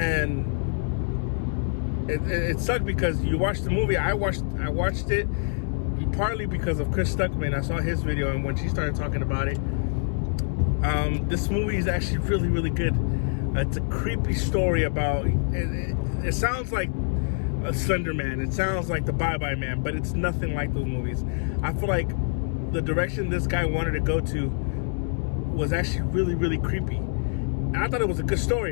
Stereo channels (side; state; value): right; silent; 56 dB below the other